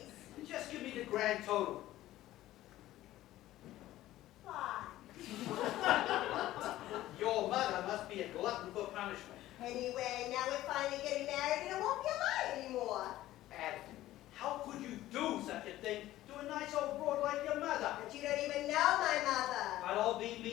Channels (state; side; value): quieter; right; 15.0 dB